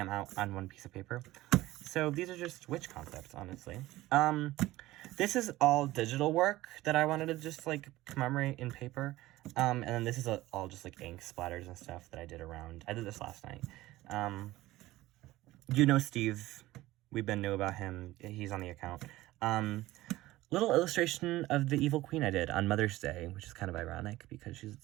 out on one piece of paper. So these are just witch concepts, honestly. This is all digital work that I wanted to just, like, commemorate in paper. And then this is all just, like, ink splatters and stuff that I did around. I did this last night. You know Steve. We've been new about him. He's on the account. Little illustration of the evil queen I did on Mother's Day, which is kind of ironic because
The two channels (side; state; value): left; quieter; 17.1 dB